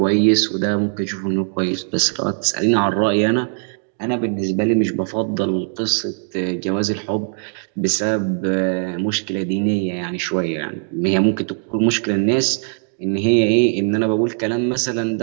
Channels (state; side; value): silent; left; 56 dB below the other